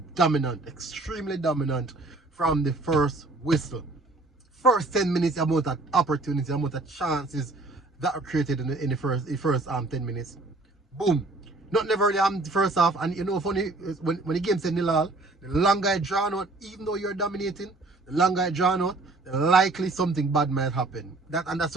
dominant, extremely dominant from the first whistle. First 10 minutes, the amount of opportunity, the amount of chances that are created in the first 10 minutes. Boom. Not never really the first half. And you know, funny, when the game said nil all, the longer I draw out, even though you're dominating, the longer I draw out, the likely something bad might happen. And that's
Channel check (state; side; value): quieter; left; 3.1 dB